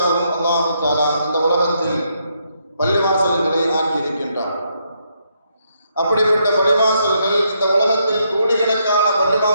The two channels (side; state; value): both; inverted; correlation -0.76